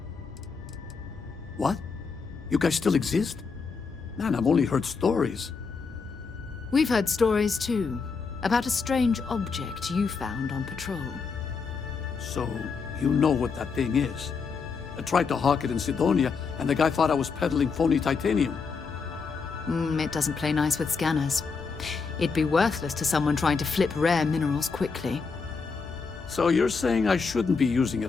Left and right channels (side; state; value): right; quieter; 5.1 dB